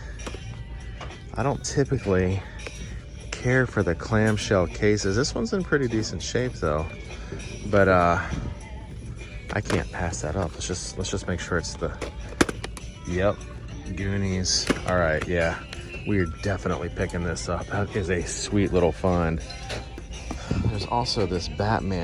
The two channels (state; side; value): identical; both; correlation 1.00